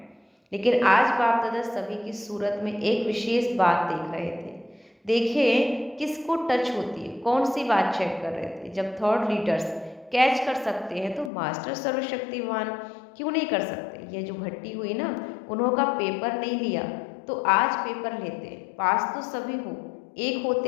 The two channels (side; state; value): right; drops out; at 11.3 s